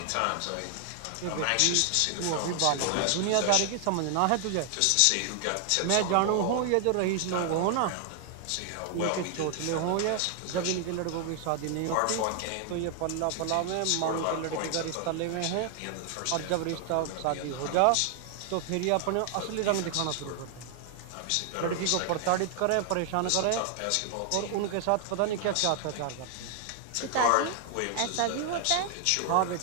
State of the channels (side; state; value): both; different; correlation 0.00